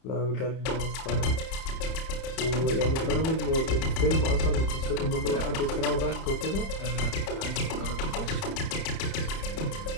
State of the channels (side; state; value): right; late; 31 ms